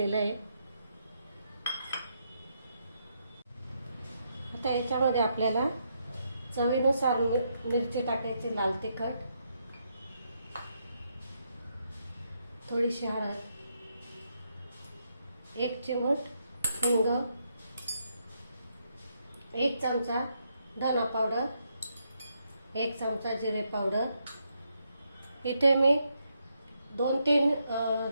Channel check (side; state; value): both; inverted; correlation -0.79